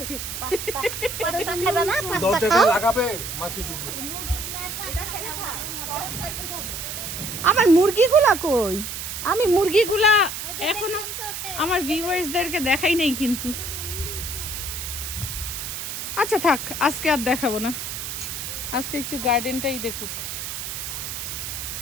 দরজাটা লাগাবে, মাছি ঢুকবে। আমার মুরগিগুলা কই? আমি মুরগিগুলা এখনো আমার ভিউয়ার্সদেরকে দেখাই নাই কিন্তু। আচ্ছা থাক, আজকে আর দেখাবো না, আজকে একটু গার্ডেনটাই দেখুক।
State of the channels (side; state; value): right; noise; hiss, 6 dB below the sound